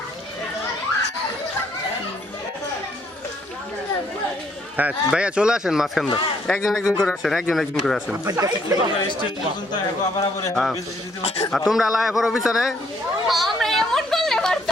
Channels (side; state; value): both; normal; correlation 0.68